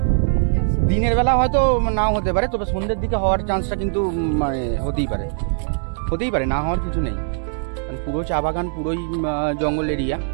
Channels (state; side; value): silent; left; digital silence